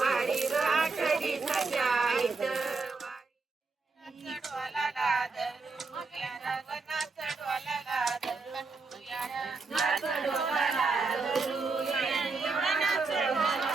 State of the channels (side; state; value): left; quieter; 4.1 dB